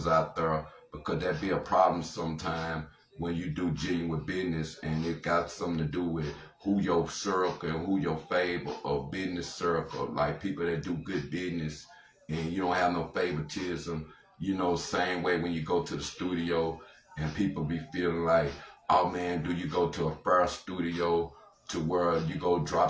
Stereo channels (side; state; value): both; identical; correlation 1.00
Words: out there, because that be a problem sometimes when you do genuine business and it got something to do with who your circle and who your favor or business circle, like people that do good business and you don't have no favoritism. You know, same way when you go to the studio and people be feeling like, oh man, do you go to a fair studio to where you go drop